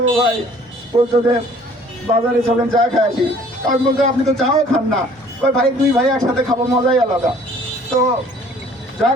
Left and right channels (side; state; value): both; normal; correlation 0.55